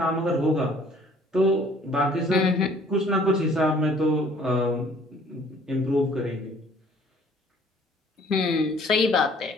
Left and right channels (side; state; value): both; normal; correlation 0.57